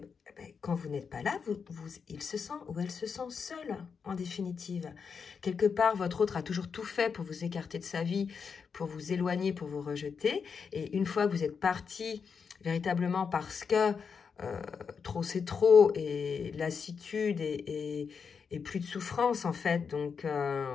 quand vous n'êtes pas là, il se sent ou elle se sent seule, en définitive. Quelque part, votre autre a toujours tout fait pour vous écarter de sa vie, pour vous éloigner, pour vous rejeter. Et une fois que vous êtes parti, véritablement parce que trop c'est trop, et lassitude et plus de souffrance, en fait. Donc,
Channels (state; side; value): quieter; right; 6.0 dB